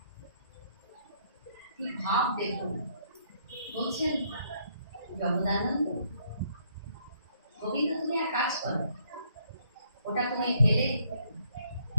কি ভাব দেখুন! বলছেন, জগদানন্দ, গোবিন্দ, তুমি এক কাজ করো, ওটা তুমি ফেলে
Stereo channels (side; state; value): both; inverted; correlation -0.69